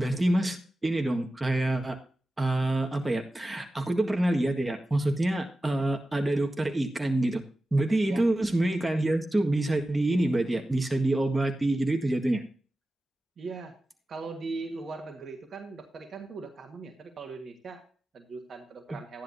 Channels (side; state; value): both; normal; correlation 0.94